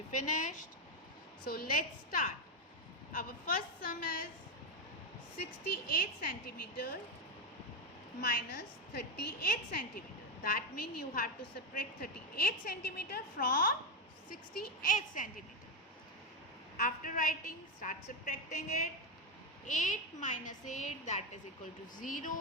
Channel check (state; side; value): normal; both; correlation 0.09